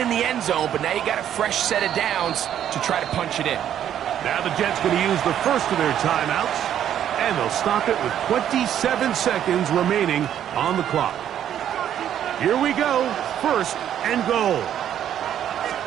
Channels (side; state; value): left; quieter; 10.3 dB